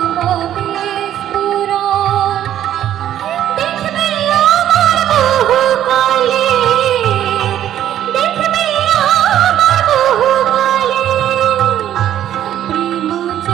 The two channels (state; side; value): quieter; left; 11.4 dB